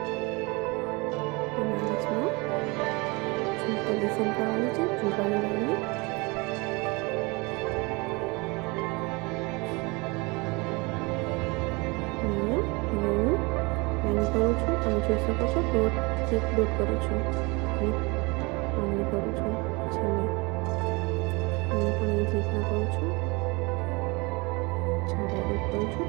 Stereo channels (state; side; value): quieter; left; 26.7 dB